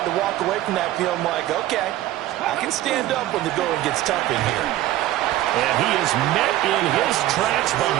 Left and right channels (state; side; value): quieter; left; 14.7 dB